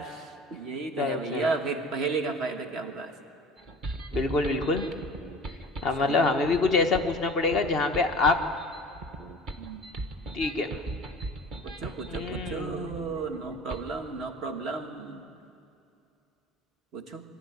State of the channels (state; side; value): normal; both; correlation 0.41